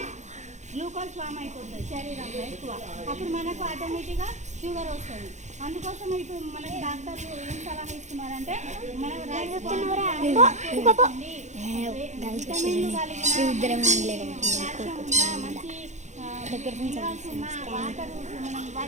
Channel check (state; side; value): late; left; 0.34 ms